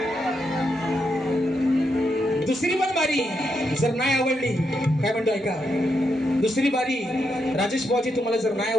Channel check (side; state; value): both; normal; correlation 0.82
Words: दुसरी पण बारी जर नाही आवडली, काय म्हणतो ऐका, दुसरी बारी राजेश बुवाची तुम्हाला जर नाही